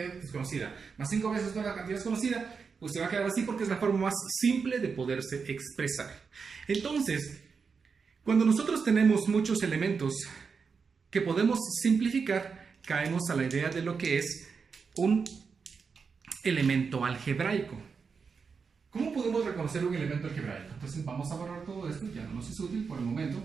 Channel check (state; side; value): quieter; left; 5.5 dB